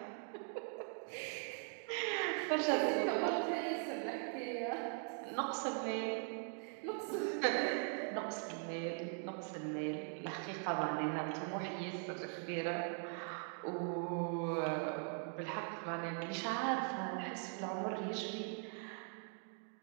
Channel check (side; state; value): left; silent; 50 dB below the other